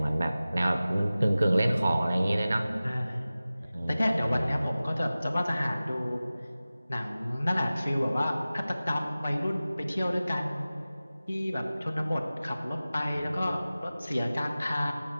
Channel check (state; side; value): inverted; both; correlation -0.97